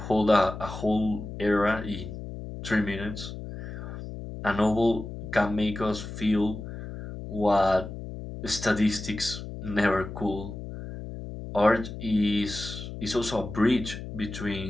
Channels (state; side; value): noise; left; hum, 9 dB below the sound